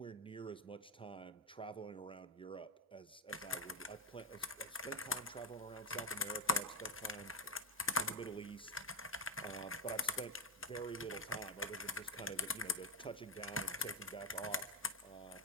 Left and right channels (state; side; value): normal; both; correlation 0.08